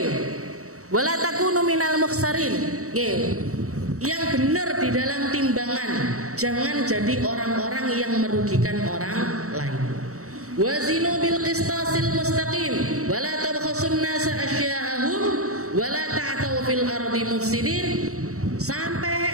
wa la takunu minal mukhsarin. Yang benar di dalam timbangan, jangan jadi orang-orang yang merugikan orang lain. Wazinu bil qistasil mustaqim wa la tabkhasun nasa asya'ahum wa la ta'tau fil ardi mufsidin,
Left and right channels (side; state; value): left; late; 0.65 ms